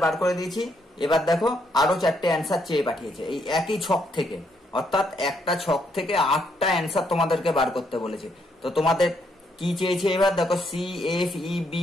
বার করে দিয়েছি। এবার দেখো আরো 4টে অ্যান্সার চেয়ে পাঠিয়েছে এই একই ছক থেকে, অর্থাৎ একটা ছক থেকে 8টা অ্যান্সার তোমাদেরকে বার করতে বলেছে। তো তোমাদের কি চেয়েছে, এবার দেখো সি এফ ই বি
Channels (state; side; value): normal; both; correlation 0.74